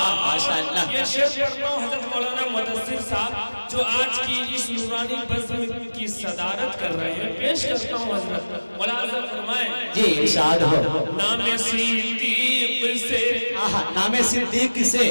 माशाअल्लाह। ये शेर पढ़ता हूं हजरत मौलाना मुदस्सिर साहब जो आज की इस नूरानी बज़्म की सदारत कर रहे हैं। पेश करता हूं हजरत मुलाज़ा फरमाएं। जी इरशाद हो। नामे सिद्दीक से, नामे सिद्दीक से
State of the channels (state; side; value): inverted; both; correlation -1.00